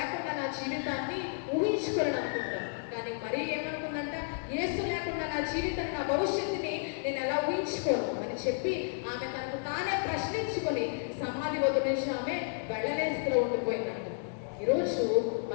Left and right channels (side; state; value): right; silent; digital silence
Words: నా జీవితాన్ని ఊహించుకోలేను అనుకుంటాం. కానీ మరీ ఏమనుకుందంట, యేసు లేకుండా నా జీవితాన్ని, నా భవిష్యత్తుని నేను ఎలా ఊహించుకోను అని చెప్పి ఆమె తనకు తానే ప్రశ్నించుకొని సమాధి వద్ద నుంచి ఆమె వెళ్ళలేస్తూ ఉండిపోయిందంట. ఈరోజు